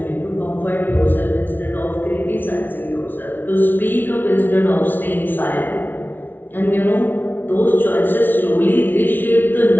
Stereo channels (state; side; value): late; right; 0.094 ms